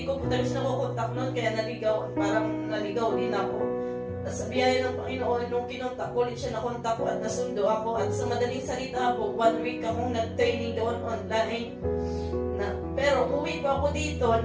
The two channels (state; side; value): identical; both; correlation 1.00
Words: ko po talaga siya nakukontak noon kaya parang naligaw din ako. At sa biyaya ng Panginoon, nung kinontak ko ulit siya, nakontak ko at nasundo ako. At sa madaling salita po, 1 week akong nag-training doon online. Pero uwi pa ako dito